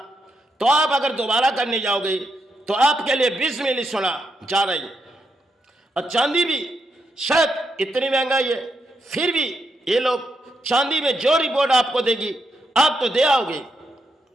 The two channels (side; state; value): both; normal; correlation 0.82